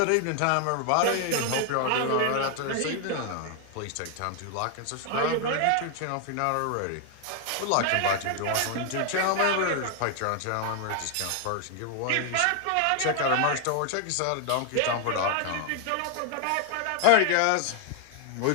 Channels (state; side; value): different; both; correlation 0.00